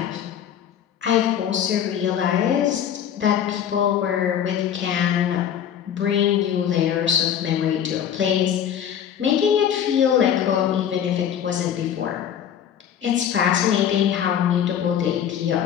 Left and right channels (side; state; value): right; quieter; 9.2 dB